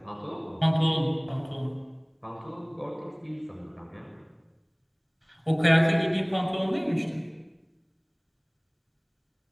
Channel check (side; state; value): both; identical; correlation 1.00